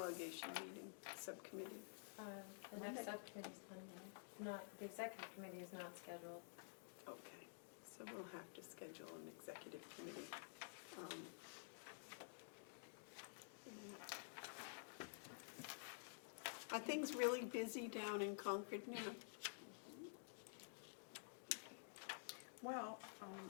meeting, subcommittee? The next subcommittee is Monday. Not, the executive committee is not scheduled. Okay, so we'll have to schedule an executive committee. things really busy down in Concord now? Well,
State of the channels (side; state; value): right; silent; digital silence